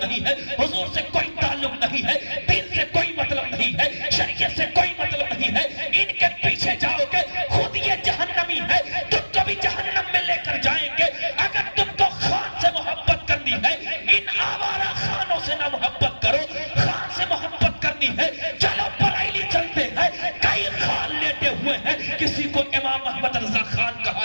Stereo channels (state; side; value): inverted; both; correlation -1.00